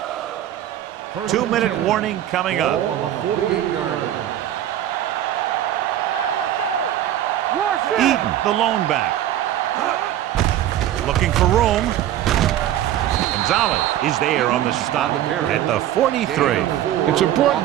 First 2-minute warning coming up. On the 48-yard line. Hey, let's go. Rush it. Eaton, the lone back. Looking for room. Gonzalez is there on the stop at the 43. It's important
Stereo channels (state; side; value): quieter; left; 12.2 dB